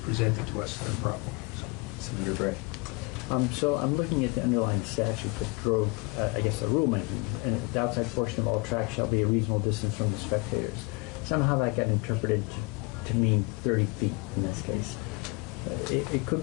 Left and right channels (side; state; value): right; quieter; 27.3 dB